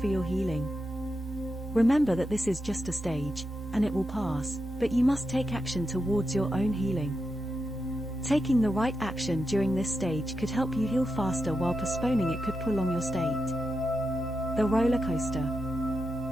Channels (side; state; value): both; normal; correlation 0.87